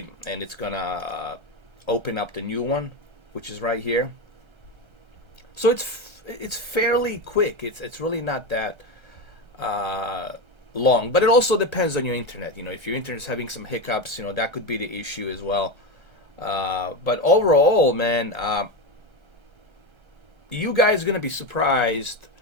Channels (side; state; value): left; late; 1.3 ms